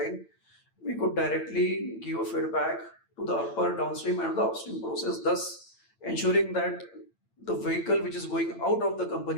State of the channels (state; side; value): late; right; 8.9 ms